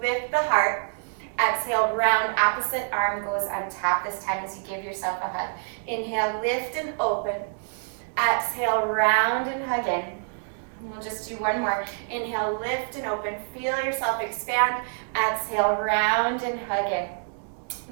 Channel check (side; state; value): left; silent; digital silence